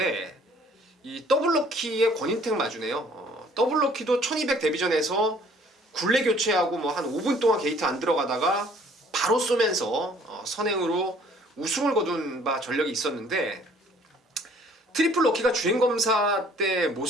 이 더블 럭키의 권인택 마주네요. 더블 럭키도 1200 데뷔전에서 굴레 교체하고 뭐 한 5분 동안 게이트 안 들어가다가 바로 쏘면서 선행으로 우승을 거둔 바 전력이 있었는데, 트리플 럭키가 주행검사 때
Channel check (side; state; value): both; normal; correlation 0.57